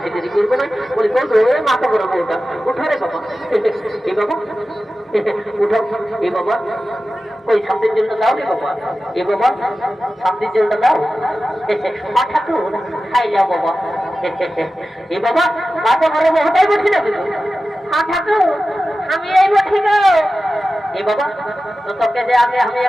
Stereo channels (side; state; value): both; normal; correlation 0.94